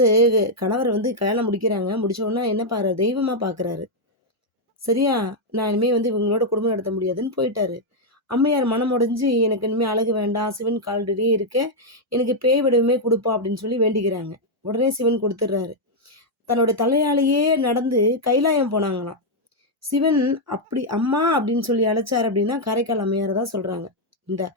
கணவர் வந்து கல்யாணம் முடிக்கிறாங்க. முடிச்ச உடனே என்ன தெய்வமா பார்க்குறாரு. சரியா? நான் இனிமே வந்து இவங்களோட குடும்பம் நடத்த முடியாதுன்னு போயிட்டாரு. அம்மையார் மனம் உடைஞ்சு, "எனக்கு இனிமே அழகு வேண்டாம். சிவன் கால்கடியே இருக்கேன். எனக்கு பேய் வடிவமே குடுப்பா" அப்படின்னு சொல்லி வேண்டிக்கிறாங்க. உடனே சிவன் குடுத்துடுறாரு. தன்னோட தலையாலேயே நடந்து கைலாயம் போனாங்களாம். சிவன் அப்படி "அம்மா" அப்படின்னு சொல்லி அழைச்சாரு அப்படின்னா, காரைக்கால் அம்மையார தான் சொல்றாங்க. இந்த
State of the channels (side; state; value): both; normal; correlation -0.02